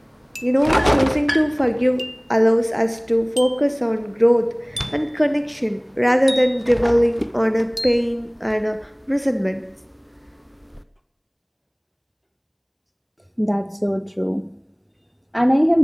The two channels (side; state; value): both; identical; correlation 1.00